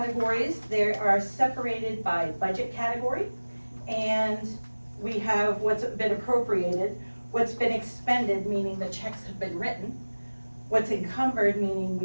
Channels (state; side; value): inverted; both; correlation -1.00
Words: they are separated by budget category, and we have what's been appropriated, what's been expended, meaning the checks have been written, what's encumbered, meaning